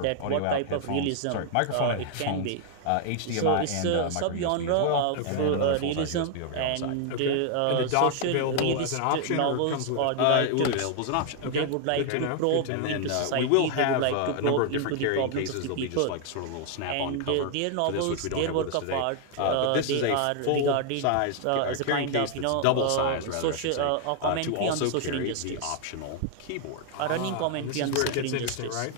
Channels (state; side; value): different; both; correlation 0.00